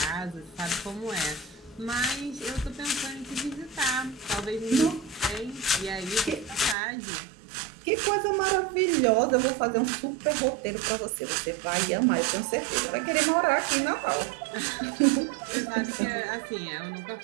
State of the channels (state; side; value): drops out; left; at 6.8 s